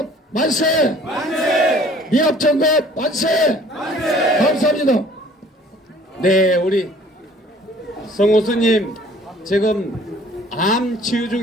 만세! 미합정급 만세! 감사합니다. 네, 우리 성호수님 지금 암 치유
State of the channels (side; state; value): both; normal; correlation 0.53